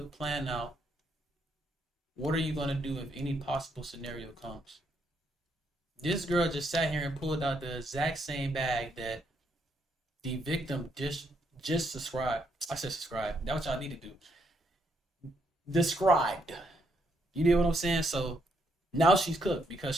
plan out what are you going to do if any possible scenario comes. This girl just sat here and pulled out the exact same bag that the victim just described. I said subscribe. That's what y'all need to do. Described. You know what I'm saying? So Now she's cooked because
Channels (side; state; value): both; normal; correlation 0.75